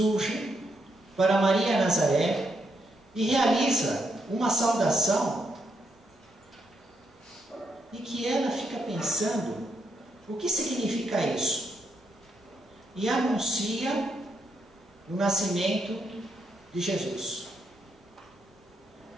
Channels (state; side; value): normal; both; correlation 0.78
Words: para Maria Nazaré e realiza uma saudação e que ela fica pensando o que significa isso e anuncia o nascimento de Jesus.